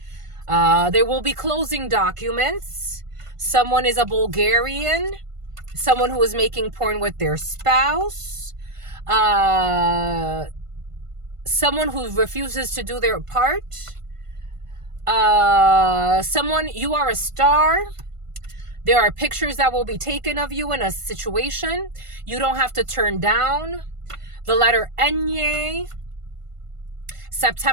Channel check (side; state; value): left; late; 1.5 ms